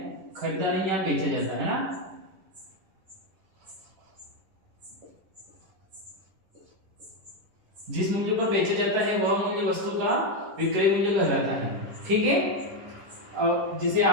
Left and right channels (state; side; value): late; left; 10 ms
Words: खरीदा नहीं, यहाँ बेचा जाता है ना। जिस मूल्य पर बेचा जाता है वह मूल्य वस्तु का विक्रय मूल्य कहलाता है। ठीक है, जिसे